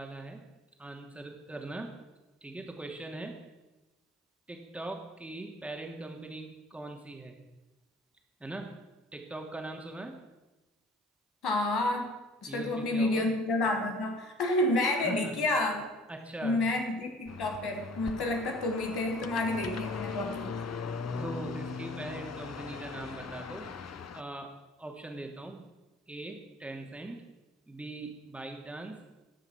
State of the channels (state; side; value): normal; both; correlation 0.49